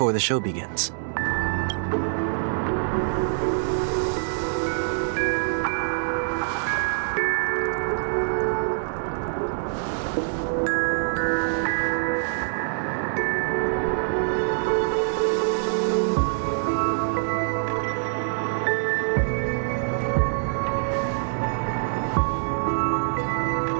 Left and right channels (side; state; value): left; silent; 62 dB below the other